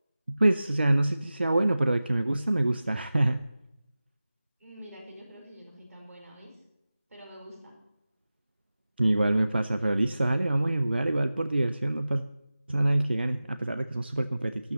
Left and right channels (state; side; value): inverted; both; correlation -0.96